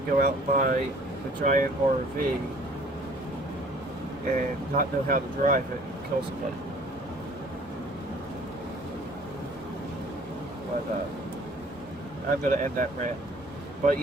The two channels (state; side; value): normal; both; correlation 0.54